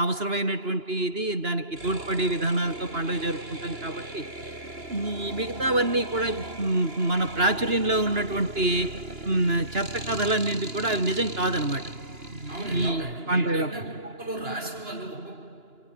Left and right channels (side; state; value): left; late; 2.9 ms